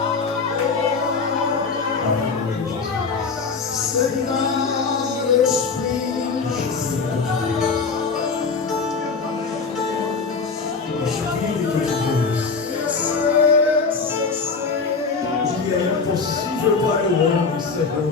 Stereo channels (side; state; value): right; quieter; 4.8 dB